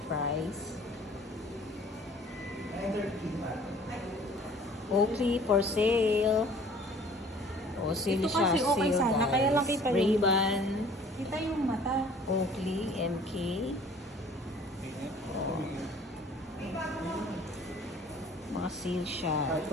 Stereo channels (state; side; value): normal; both; correlation 0.52